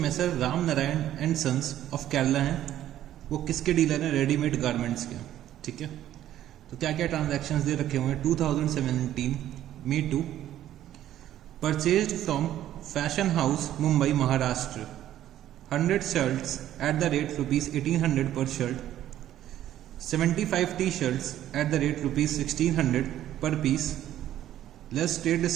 Ramnarayan and sons of Kerala हैं, वो किसके डीलर हैं? रेडीमेड गारमेंट्स के। ठीक है, तो क्या क्या ट्रांजैक्शंस दे रखे हुए हैं? 2017 Me Too purchased from fashion house Mumbai Maharashtra 100 shirts at the rate ₹1800 per shirt, 75 t-shirts at the rate ₹1600 per piece, less trade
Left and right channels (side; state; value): left; quieter; 12.3 dB